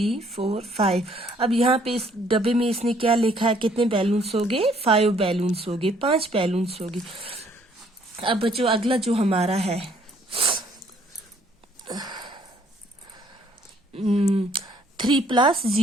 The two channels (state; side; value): normal; both; correlation 0.63